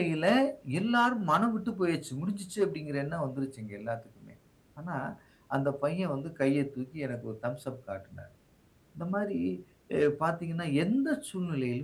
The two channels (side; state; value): both; identical; correlation 1.00